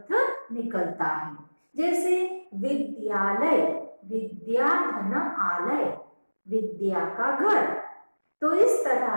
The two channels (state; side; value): inverted; both; correlation -1.00